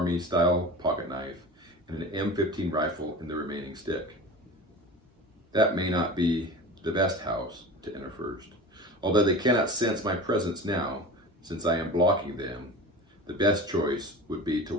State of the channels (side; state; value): both; normal; correlation 0.34